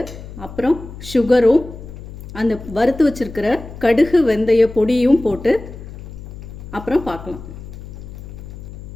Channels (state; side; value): noise; left; hum, 13 dB below the sound